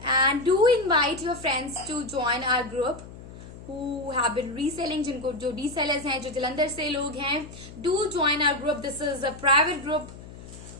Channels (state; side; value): noise; left; hum, 16 dB below the sound